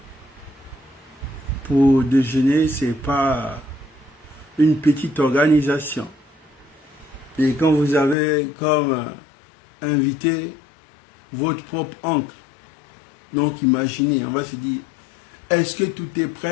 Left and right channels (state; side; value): drops out; right; at 8.2 s